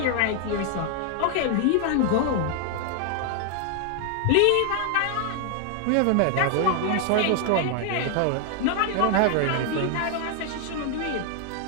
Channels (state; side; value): different; both; correlation 0.00